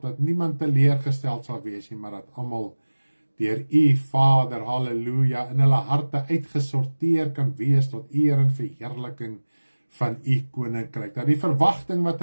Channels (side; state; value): both; inverted; correlation -1.00